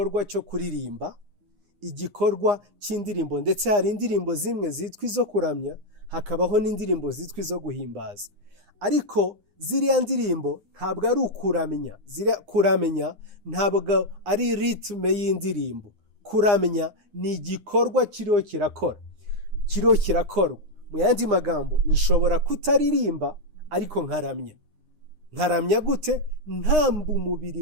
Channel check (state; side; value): late; left; 9.8 ms